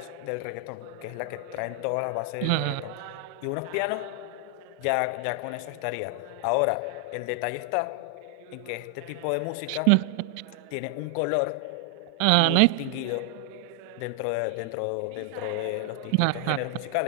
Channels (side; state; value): both; different; correlation 0.00